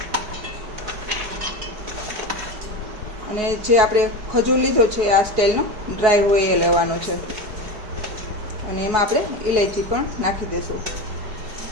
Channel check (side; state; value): left; late; 4.7 ms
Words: अने जे आपणे खजूर लीधो छे आ स्टाइलनो ड्राय होय ए लेवानो छे अने एमां आपणे इलायची पण नाखी देशुं